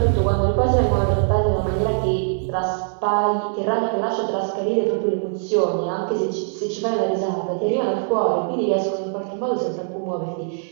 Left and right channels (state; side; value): silent; left; digital silence